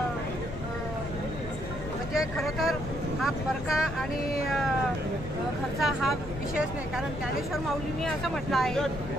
म्हणजे खरं तर हा परका आणि घरचा हा विषयच नाही, कारण ज्ञानेश्वर माऊलींनी असं म्हटलं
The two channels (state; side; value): noise; left; rumble, 10 dB below the sound